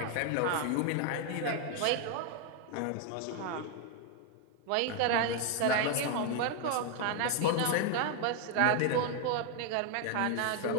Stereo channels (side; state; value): both; different; correlation 0.00